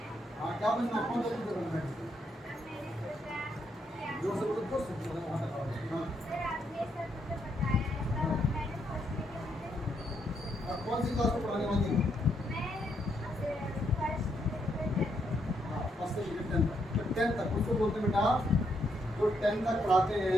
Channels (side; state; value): both; normal; correlation 0.77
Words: हाँ, क्या बनना? कौन सा टीचर बनना है? जो से बोलो बहुत सब बोला वहाँ तक। हाँ, अब कौन सी क्लास को पढ़ाने वाली है? फर्स्ट से लेकर 10 तक। तो 10 तक उसको बोलते हैं बेटा, जो 10 तक पढ़ाते